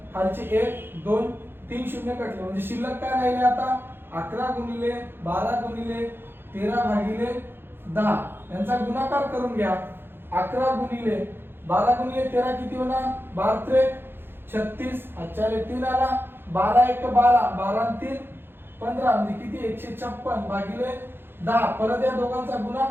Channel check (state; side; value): late; left; 0.10 ms